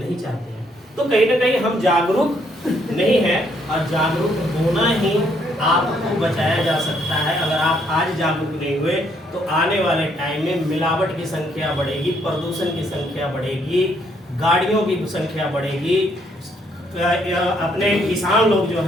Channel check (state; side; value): normal; both; correlation 0.70